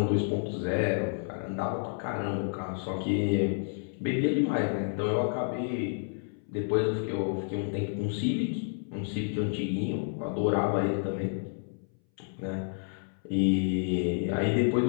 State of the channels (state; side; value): silent; right; 58 dB below the other